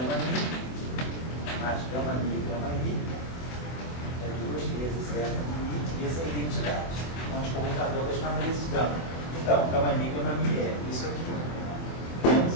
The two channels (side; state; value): right; late; 24 ms